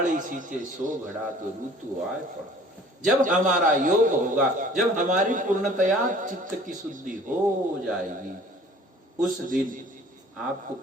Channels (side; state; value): both; normal; correlation 0.51